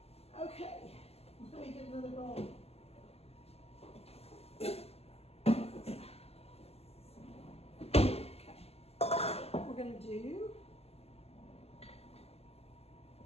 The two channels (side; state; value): right; late; 0.29 ms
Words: Okay, let me get another bowl. Okay, we're gonna do